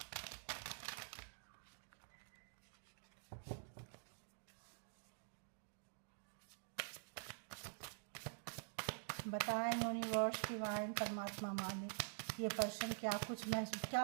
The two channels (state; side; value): silent; left; digital silence